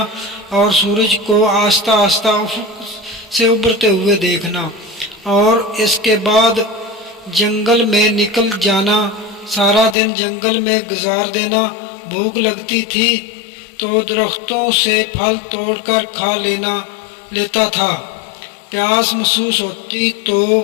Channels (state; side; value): drops out; right; at 10.0 s